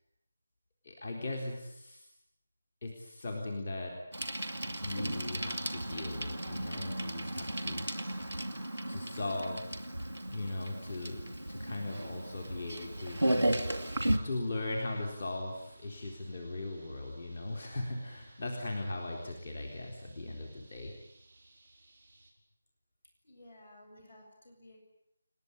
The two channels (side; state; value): both; inverted; correlation -0.93